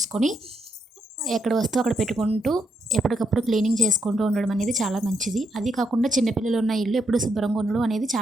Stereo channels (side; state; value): both; normal; correlation 0.77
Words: ఎక్కడ వస్తువు అక్కడ పెట్టుకుంటూ ఎప్పటికప్పుడు క్లీనింగ్ చేసుకుంటూ ఉండడం అనేది చాలా మంచిది. అది కాకుండా చిన్నపిల్లలు ఉన్న ఇల్లు ఎప్పుడు శుభ్రంగా ఉండడం అనేది